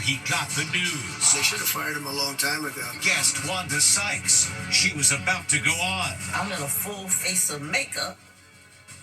got the news. They should have fired him a long time ago. Guest Wanda Sykes. She was about to go on. I'm in a full face of makeup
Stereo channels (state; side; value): identical; both; correlation 1.00